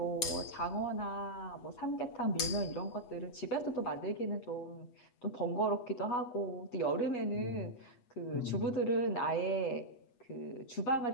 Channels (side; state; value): right; late; 8.2 ms